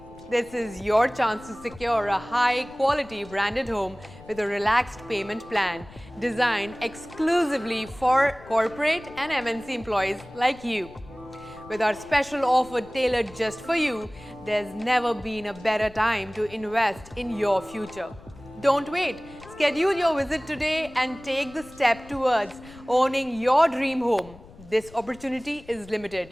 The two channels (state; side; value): noise; left; rumble, 21 dB below the sound